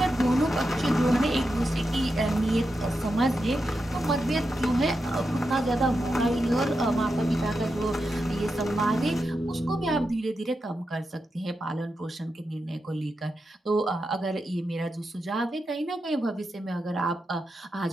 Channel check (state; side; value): normal; both; correlation 0.88